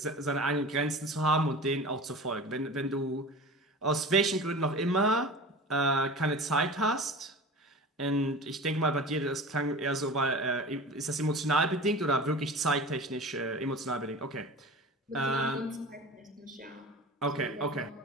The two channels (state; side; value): normal; both; correlation 0.35